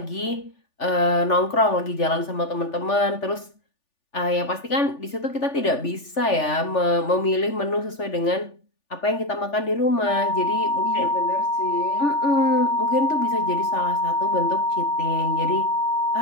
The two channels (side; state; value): right; late; 3.4 ms